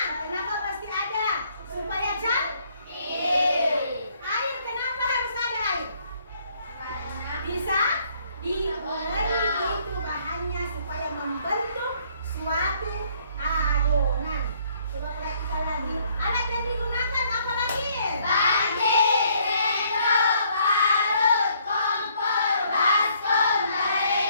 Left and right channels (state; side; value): inverted; both; correlation -0.66